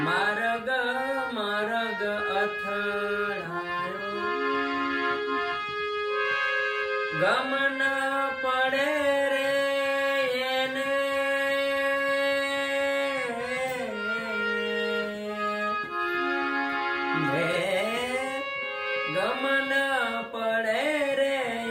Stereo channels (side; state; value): both; identical; correlation 1.00